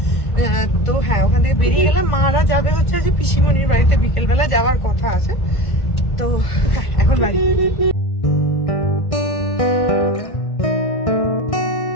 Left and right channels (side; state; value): right; late; 1.5 ms